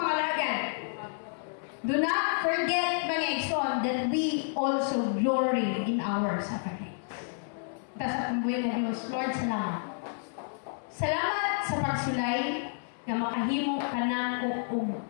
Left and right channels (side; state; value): right; silent; 58 dB below the other